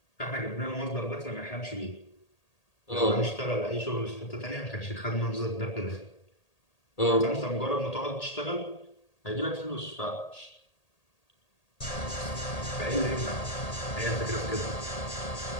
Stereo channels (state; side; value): late; right; 1.8 ms